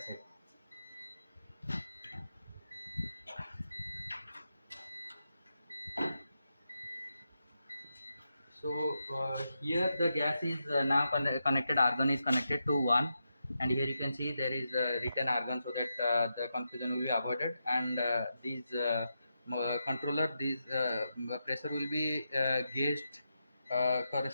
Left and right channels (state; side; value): inverted; both; correlation -0.86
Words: So here the gas is now connected. Argon is connected to 1, and here you can see there is written Argon, so that the confusion will be avoided. And these controller, these pressure will be gauged